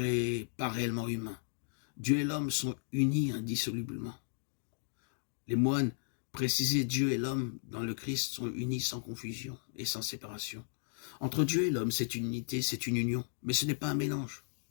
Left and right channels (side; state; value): right; silent; digital silence